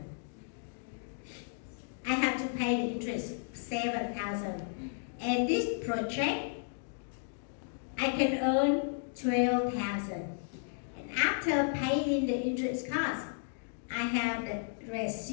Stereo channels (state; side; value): silent; right; digital silence